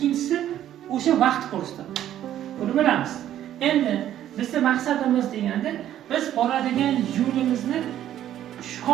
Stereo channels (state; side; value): quieter; left; 11.6 dB